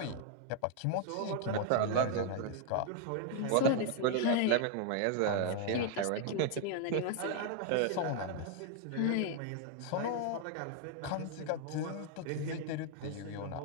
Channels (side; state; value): both; different; correlation 0.00